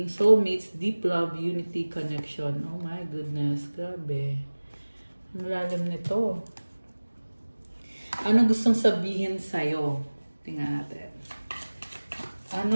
soulmates, deep love, unity, connection. Oh my goodness, grabe. Ang lalim nito. Ano gustong sabihin sa'yo? Tingnan natin.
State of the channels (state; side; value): inverted; both; correlation -1.00